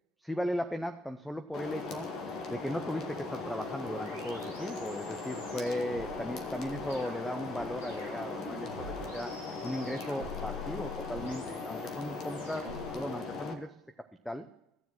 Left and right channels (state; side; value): normal; both; correlation 0.74